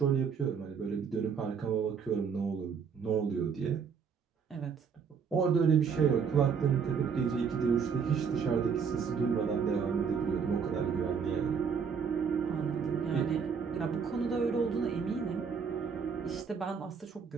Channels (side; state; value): left; quieter; 6.4 dB